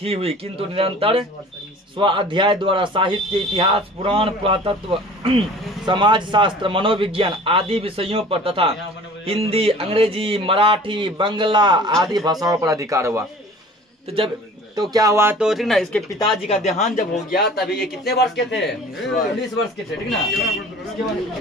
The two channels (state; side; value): normal; both; correlation 0.45